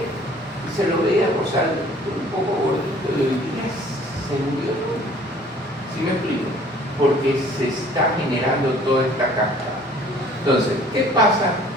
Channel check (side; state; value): both; normal; correlation 0.53